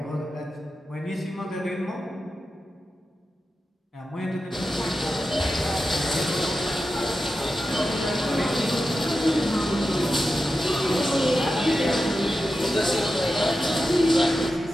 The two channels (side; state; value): both; normal; correlation 0.91